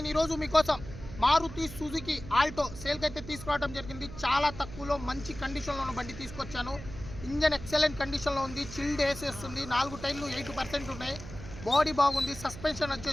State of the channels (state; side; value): noise; right; hum, 13 dB below the sound